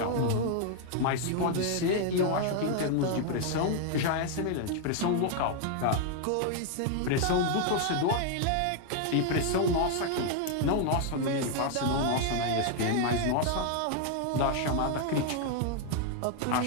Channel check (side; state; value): both; different; correlation 0.00